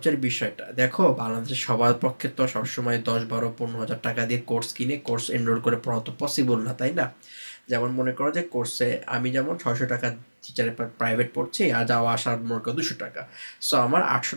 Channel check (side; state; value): both; inverted; correlation -1.00